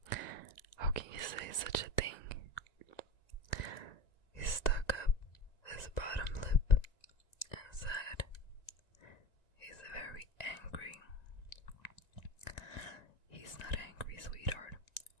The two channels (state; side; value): late; right; 1.9 ms